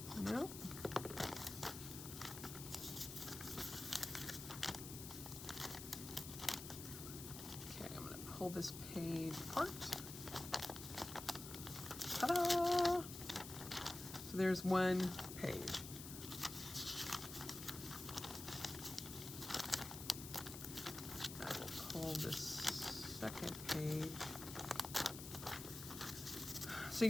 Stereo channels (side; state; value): left; noise; hiss, 9 dB below the sound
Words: No. Okay, I'm going to pull this page apart. Ta-da! So there's one page. I will pull this second page. So